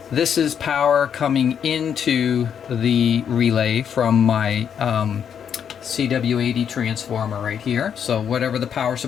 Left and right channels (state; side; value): quieter; right; 8.0 dB